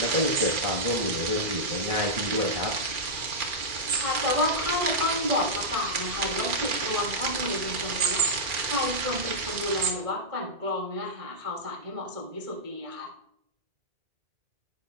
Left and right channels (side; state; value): left; late; 2.4 ms